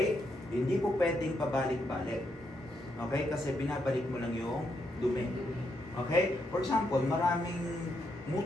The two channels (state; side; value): normal; both; correlation 0.79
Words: Hindi po pwedeng pabalik-balik. Okay? Kasi binabalik mo lang yung dumi. Okay? For example, maraming